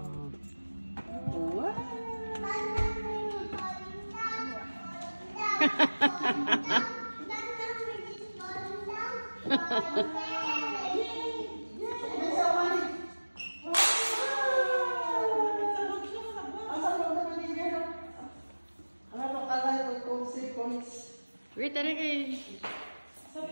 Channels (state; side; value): inverted; both; correlation -1.00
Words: Wow. Wait, tara kayo.